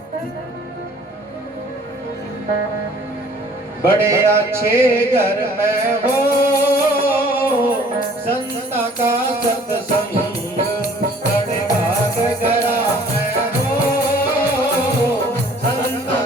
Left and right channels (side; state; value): both; normal; correlation 0.54